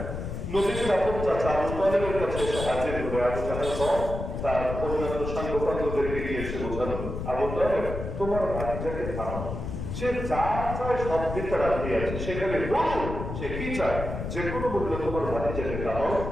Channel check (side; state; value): left; noise; rumble, 6 dB below the sound